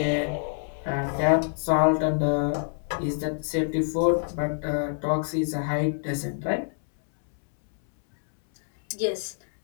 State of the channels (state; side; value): silent; right; 61 dB below the other